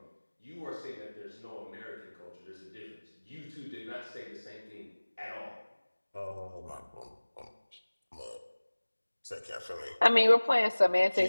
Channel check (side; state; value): both; inverted; correlation -1.00